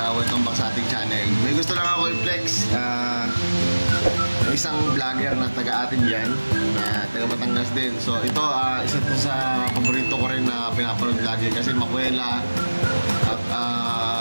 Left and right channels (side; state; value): both; inverted; correlation -1.00